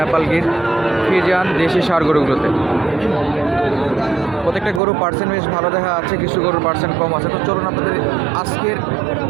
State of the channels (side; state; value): left; drops out; at 4.8 s